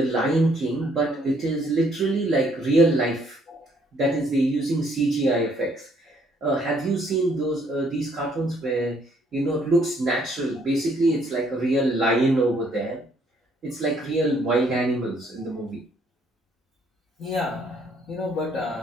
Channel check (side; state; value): both; normal; correlation 0.66